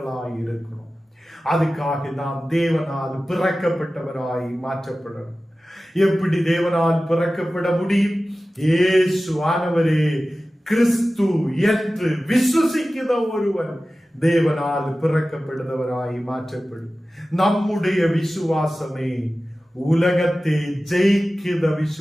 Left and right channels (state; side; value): normal; both; correlation 0.96